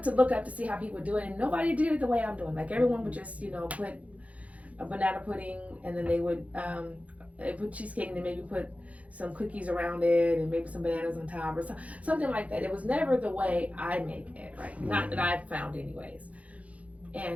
to look up to see how people do it, and nobody did it the way I'm doing. Like, everyone would just, put a banana pudding, and then they would put cheesecake, and then maybe put some cookies around it, and maybe some bananas on top, or something like that. It was never the way I make it, right? Not that I've found anyways.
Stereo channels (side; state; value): left; late; 0.067 ms